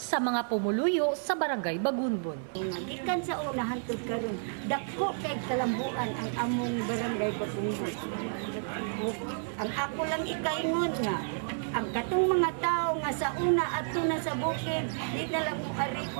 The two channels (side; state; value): left; silent; 57 dB below the other